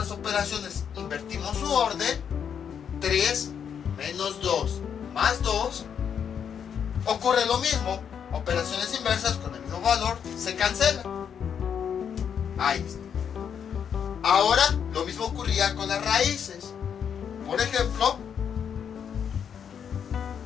operaciones invertimos su orden, 3 menos 2 más 2, ocurre lo mismo. Operaciones inversas con el mismo valor se cancelan. Ahí está. Ahora lo mismo ocurría con las raíces. Por ejemplo,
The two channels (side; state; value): right; quieter; 7.8 dB